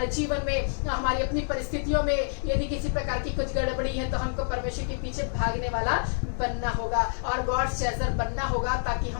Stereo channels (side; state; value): right; silent; digital silence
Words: जीवन में, हमारी अपनी परिस्थितियों में यदि किसी प्रकार की कुछ गड़बड़ी है तो हमको परमेश्वर के पीछे भागने वाला बनना होगा और गॉड चेजर बनना होगा, ताकि